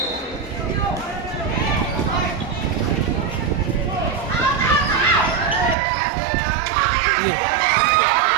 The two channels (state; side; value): drops out; left; at 5.8 s